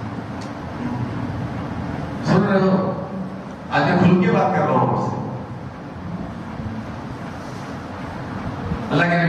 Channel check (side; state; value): both; identical; correlation 1.00